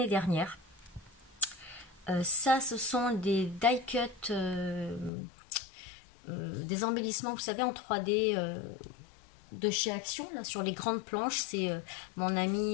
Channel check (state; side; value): drops out; right; at 5.1 s